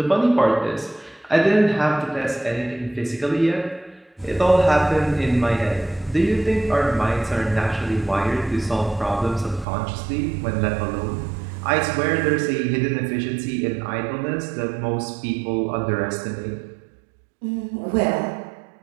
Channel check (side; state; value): left; drops out; at 9.7 s